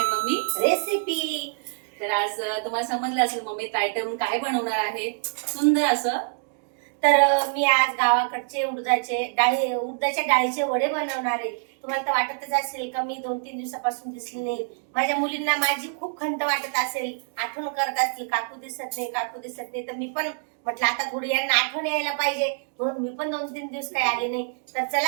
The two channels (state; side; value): silent; left; digital silence